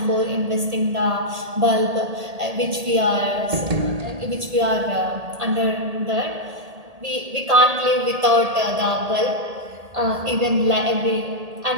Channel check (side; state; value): left; late; 1.8 ms